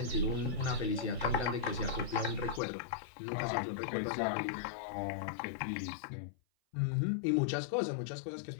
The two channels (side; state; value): right; drops out; at 2.6 s